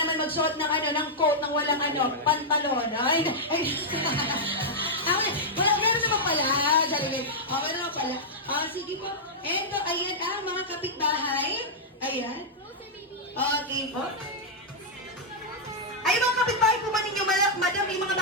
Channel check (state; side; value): normal; both; correlation -0.06